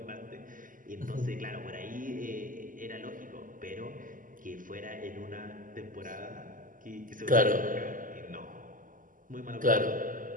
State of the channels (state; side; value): late; left; 0.39 ms